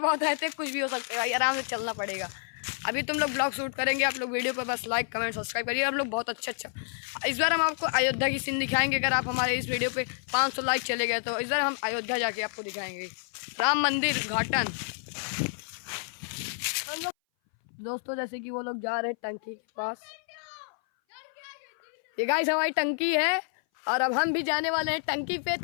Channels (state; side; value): silent; right; 58 dB below the other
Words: बहुत रहते हैं, कुछ भी हो सकता है भाई, आराम से चलना पड़ेगा। अभी तुम लोग ब्लॉग शूट करेंगे, आप लोग वीडियो पर बस लाइक कमेंट सब्सक्राइब करिए। हम लोग बहुत अच्छा इस बार हम आपको अयोध्या की सीन दिखाएंगे। अगर आप हमारे इस वीडियो पे 500 लाइक चले गए तो इस बार हम अयोध्या जाके आपको दिखाएंगे राम मंदिर उद्घाटन। दोस्तों जैसे कि वो लोग जा रहे हैं टंकी के पास, ये गाइस हमारी टंकी है और अब हम भी जाने वाले हैं टंकी पे।